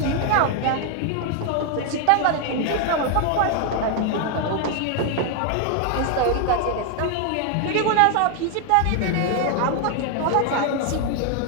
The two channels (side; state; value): both; different; correlation 0.00